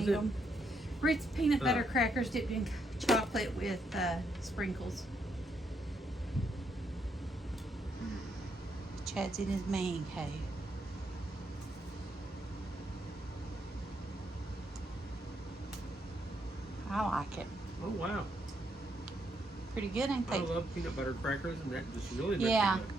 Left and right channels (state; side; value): normal; both; correlation 0.77